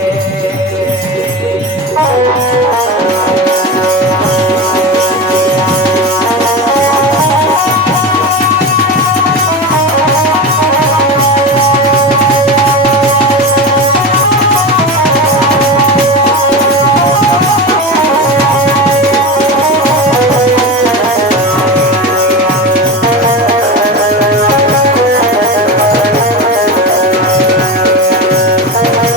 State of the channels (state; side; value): normal; both; correlation 0.24